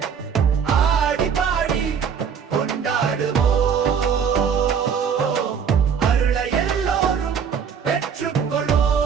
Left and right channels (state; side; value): quieter; left; 7.0 dB